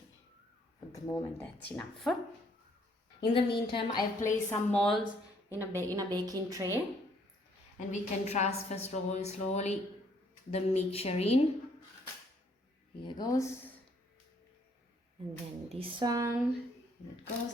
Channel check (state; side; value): normal; both; correlation 0.66